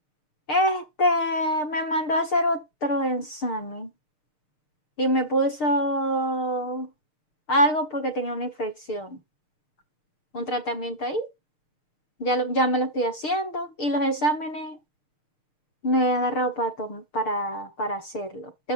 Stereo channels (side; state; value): right; late; 6.6 ms